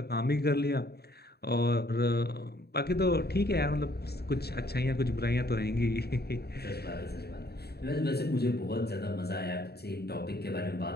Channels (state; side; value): late; right; 0.47 ms